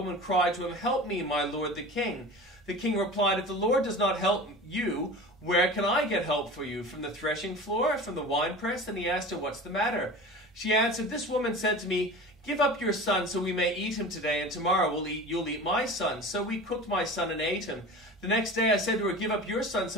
cried to him, "Help me, my lord the king." The king replied, "If the Lord does not help you, where can I get help for you? From the threshing floor? From the winepress?" Then he asked her, "What's the matter?" She answered, "This woman said to me, 'Give up your son so we may eat him today, and tomorrow you'll eat my son.' So we cooked my son and ate him. The next day I said to her, 'Give up your son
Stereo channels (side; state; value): both; normal; correlation 0.35